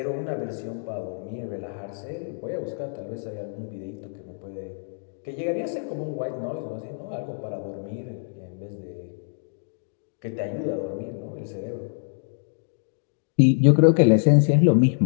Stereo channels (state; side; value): silent; right; digital silence